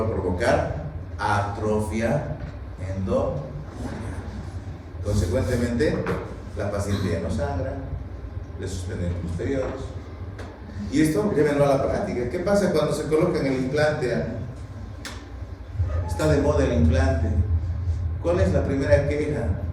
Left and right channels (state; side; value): identical; both; correlation 1.00